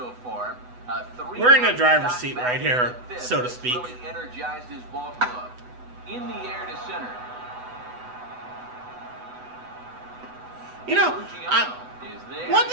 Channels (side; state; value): left; late; 8.1 ms